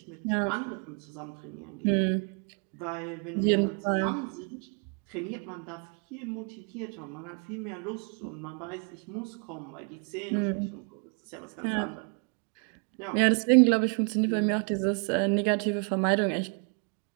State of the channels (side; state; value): left; quieter; 39.9 dB